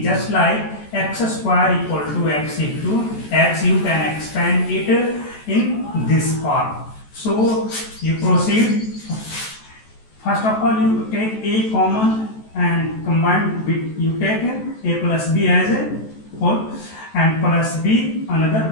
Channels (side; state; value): right; late; 14 ms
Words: just like x square equal to x into x. You can expand it in this form. So you proceed. First of all, you take a common and combine with, you take a plus b as a whole and plus b,